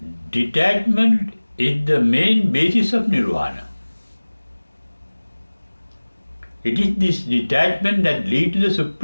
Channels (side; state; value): both; inverted; correlation -1.00